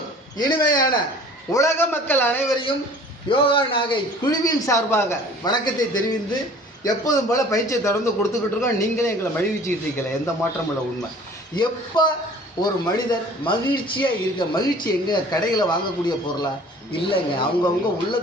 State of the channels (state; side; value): normal; both; correlation 0.48